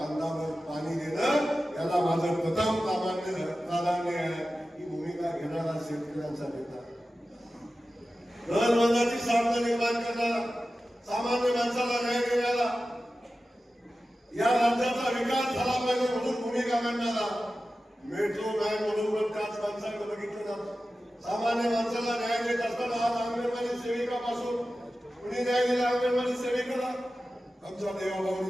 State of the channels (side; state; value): both; normal; correlation 0.94